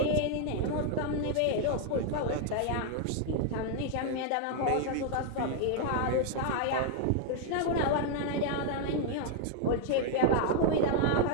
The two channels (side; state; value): both; different; correlation 0.00